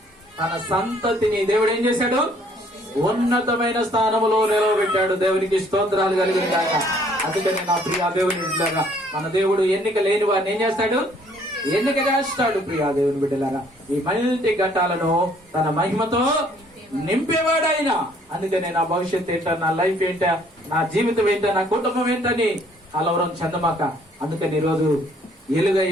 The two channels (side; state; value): both; normal; correlation 0.62